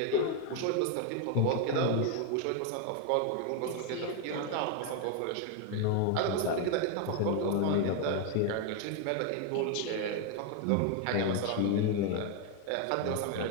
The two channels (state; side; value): different; both; correlation 0.01